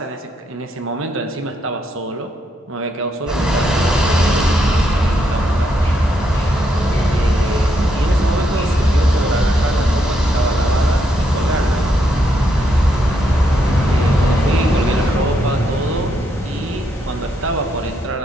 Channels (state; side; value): normal; both; correlation 0.78